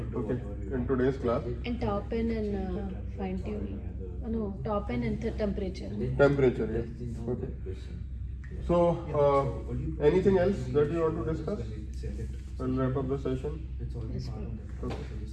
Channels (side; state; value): both; identical; correlation 1.00